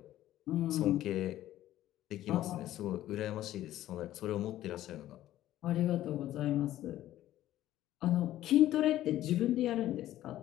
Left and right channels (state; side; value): quieter; right; 13.7 dB